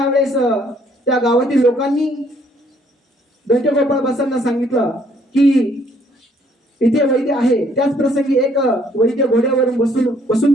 त्या गावातील लोकांनी दंते गोपाळ बासांना सांगितलं की इथे वैद्य आहे. त्याच प्रसंगी एक वैद्य घोड्यावरून बसून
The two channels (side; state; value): both; normal; correlation 0.64